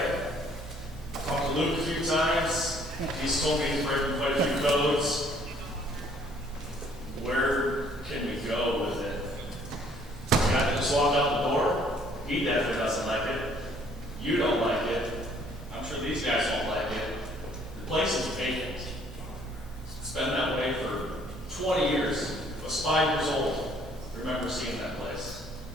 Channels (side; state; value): both; normal; correlation 0.61